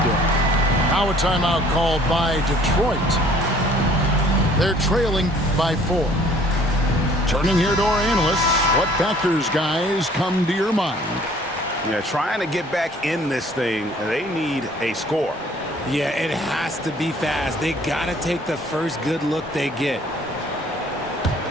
do it. Now a timeout called by Detroit. They're trailing by 4. Turning here to our analysts, what factors, guys, come to your mind? Yeah, trying to get back in this thing, they need a score. Yeah, it has to be fast. They got to take the first good look they get.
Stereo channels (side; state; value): both; normal; correlation 0.56